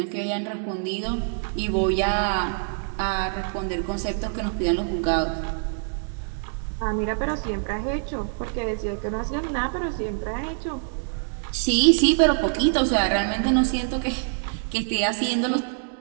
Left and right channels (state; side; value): silent; left; digital silence